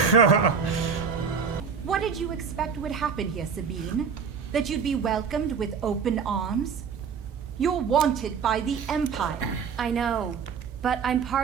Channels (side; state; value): left; quieter; 6.2 dB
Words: What did you expect would happen here, Sabine? That you'd be welcomed with open arms? You're wanted by the Empire. I know, but I'm